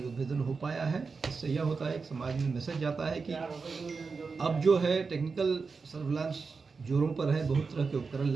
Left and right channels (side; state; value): left; quieter; 4.8 dB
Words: उद्भेदन हो पाया है। इससे यह होता है कि समाज में मैसेज जाता है कि अब जो है टेक्निकल सर्विलांस जोरों पर है, बहुत तरह के उपकरण